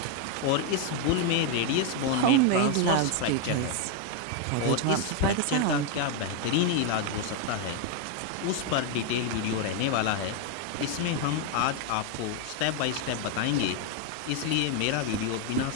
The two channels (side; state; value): both; different; correlation 0.01